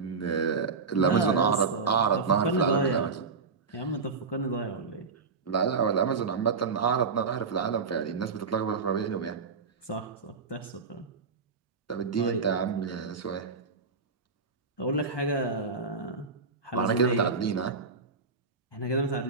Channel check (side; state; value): left; quieter; 4.7 dB